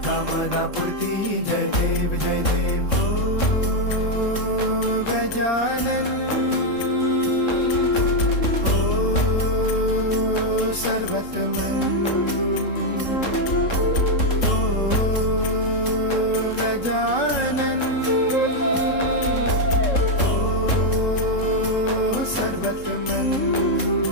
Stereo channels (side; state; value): right; late; 3.7 ms